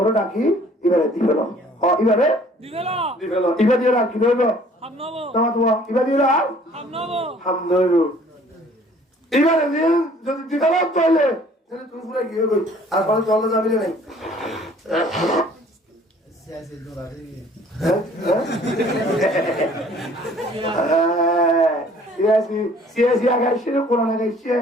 ডাকি এবারে দিবেল এবারে দিবেল এবারে দিয়ে রাখি দেব তোমার তোমার এবারে দিয়ে রাখ হামদর এবারে দিয়ে যদি দিবেল তাহলে তুমি পুরো গিয়ে গই আর পরে চলে যাবি না সিয়াসি আগাইছে কোরআন আগাইছে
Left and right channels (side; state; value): both; normal; correlation 0.55